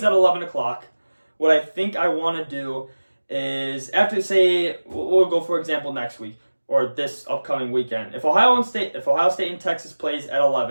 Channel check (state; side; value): inverted; both; correlation -1.00